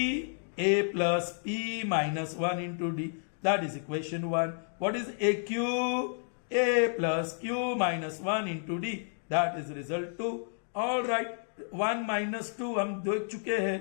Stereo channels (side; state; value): right; silent; digital silence